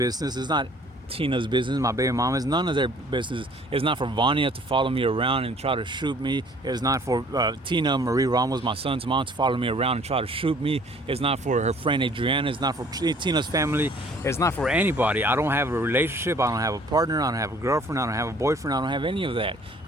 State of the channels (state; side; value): normal; both; correlation 0.55